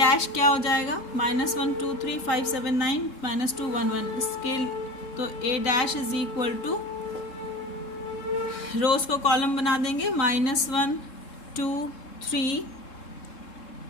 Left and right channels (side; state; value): right; late; 3.7 ms